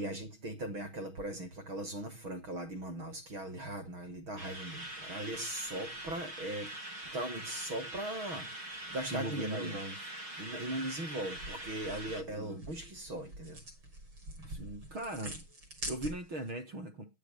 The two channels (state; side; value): late; left; 6.3 ms